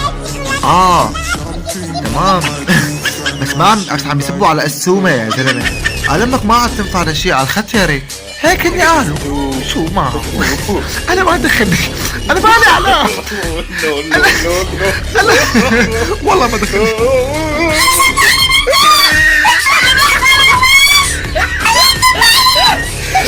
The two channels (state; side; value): identical; both; correlation 1.00